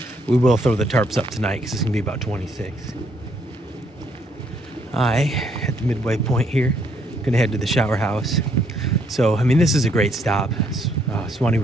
We will throw the tarps up tonight because it's gonna be about 26. At the midway point here, gonna head to the shower house. So, I mean, this is a great stop. Suwannee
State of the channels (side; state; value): both; normal; correlation 0.70